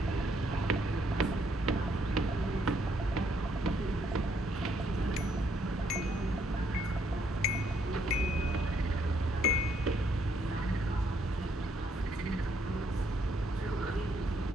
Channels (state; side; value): normal; both; correlation 0.71